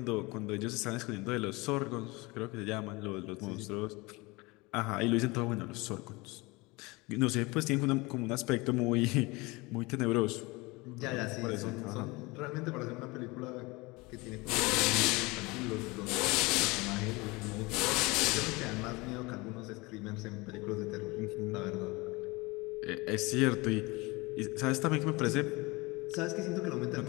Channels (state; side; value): quieter; right; 24.2 dB